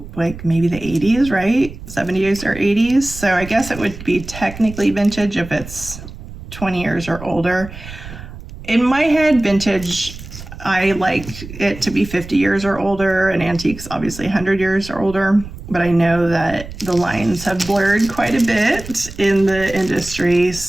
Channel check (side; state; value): right; noise; rumble, 14 dB below the sound